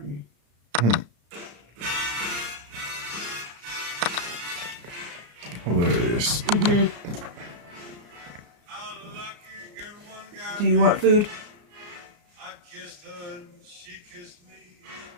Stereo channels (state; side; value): late; left; 34 ms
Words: Hilarious. Do you want food?